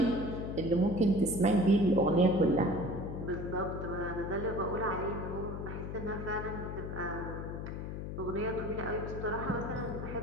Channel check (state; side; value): noise; left; hum, 6 dB below the sound